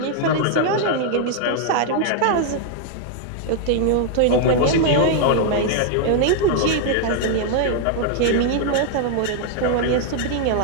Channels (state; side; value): different; both; correlation 0.00